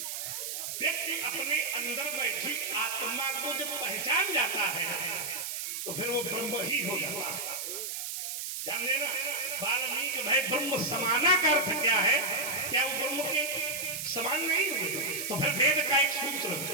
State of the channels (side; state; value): right; noise; hiss, 4 dB below the sound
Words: व्यक्ति अपने अंदर बैठी आत्मा को जब पहचान जाता है तो फिर वो ब्रह्म ही हो जाता है। ध्यान देना, वाल्मीकि भाई ब्रह्म समाना का अर्थ क्या है? क्या वो ब्रह्म के समान नहीं हुए? तो फिर वेद का एक सूत्र,